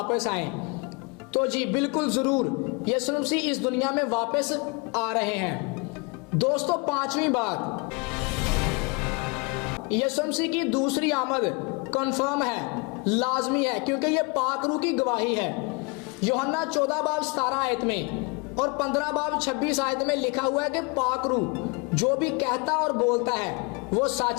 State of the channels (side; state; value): right; quieter; 29.8 dB